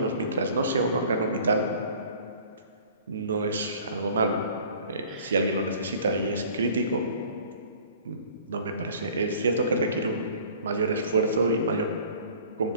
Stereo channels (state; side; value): inverted; both; correlation -0.49